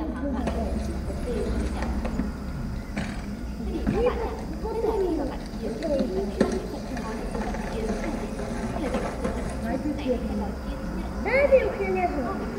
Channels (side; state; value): both; identical; correlation 1.00